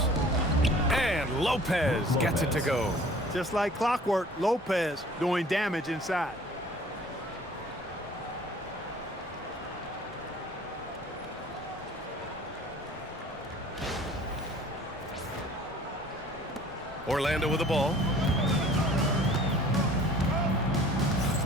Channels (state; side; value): normal; both; correlation 0.50